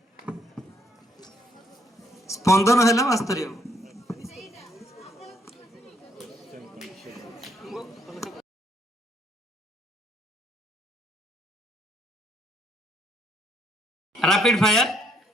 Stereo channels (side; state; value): both; normal; correlation 0.70